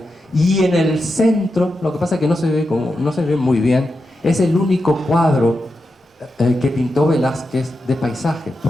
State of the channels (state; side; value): normal; both; correlation 0.88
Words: Y en el centro, lo que pasa es que no se ve muy bien, es el único cuadro que pintó Velázquez de paisaje,